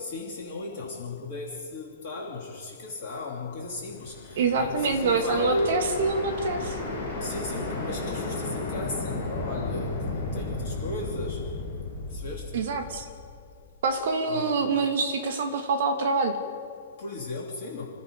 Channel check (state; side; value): inverted; both; correlation -0.42